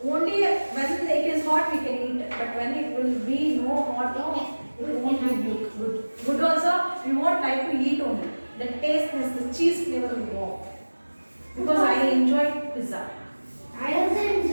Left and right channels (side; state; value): both; inverted; correlation -1.00